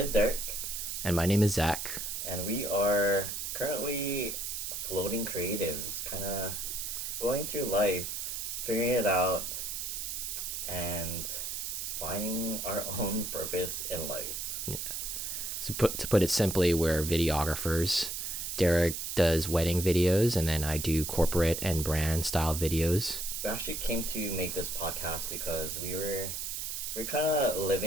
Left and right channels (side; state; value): right; noise; hiss, 4 dB below the sound